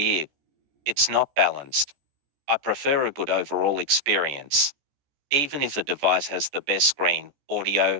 It's not balanced. I prefer a good overall experience. Even if a device has the best screen,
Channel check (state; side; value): late; left; 14 ms